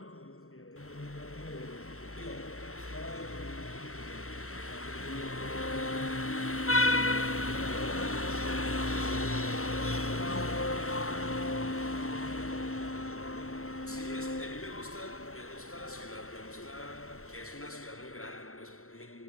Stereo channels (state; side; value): late; right; 0.63 ms